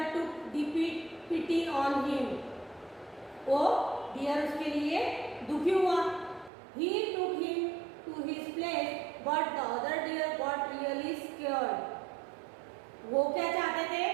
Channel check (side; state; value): left; drops out; at 6.5 s